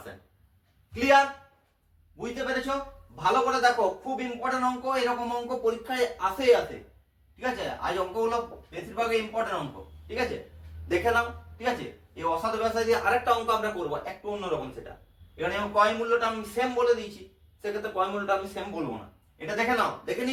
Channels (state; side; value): identical; both; correlation 1.00